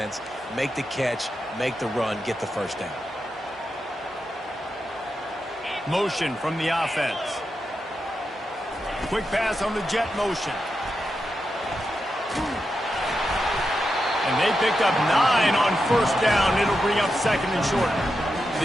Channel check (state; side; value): normal; both; correlation 0.87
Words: Make the catch. Make the run. Get the first down. Motion from the offense. Quick pass on the jet motion. And they picked up 9 on first down. It'll bring up second and short. The